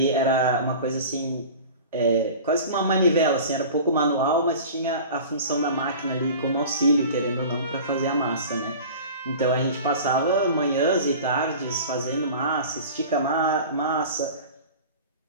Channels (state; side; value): inverted; both; correlation -0.38